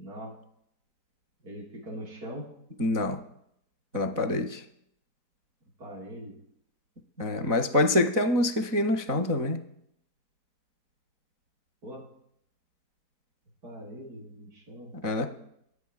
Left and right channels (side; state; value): left; late; 4.1 ms